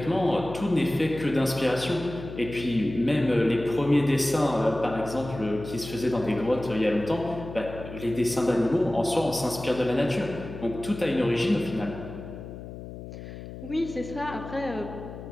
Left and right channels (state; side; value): noise; left; hum, 12 dB below the sound